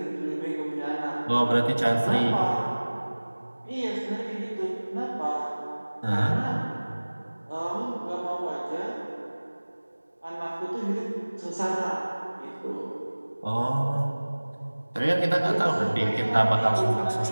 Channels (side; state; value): both; inverted; correlation -1.00